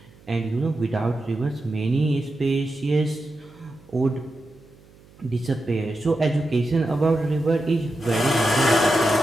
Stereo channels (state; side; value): noise; right; hum, 26 dB below the sound